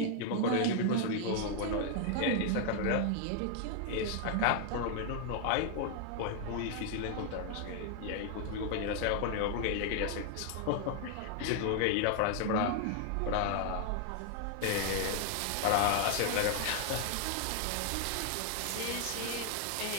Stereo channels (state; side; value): different; both; correlation 0.00